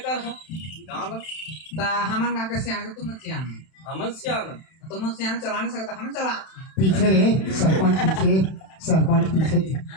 कर हा गांव में ता हमन का कैसे आने तुम सियान हमन से आना तुम सियान चला नहीं सकता हमें चला पीछे रे सरपंच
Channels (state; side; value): late; right; 31 ms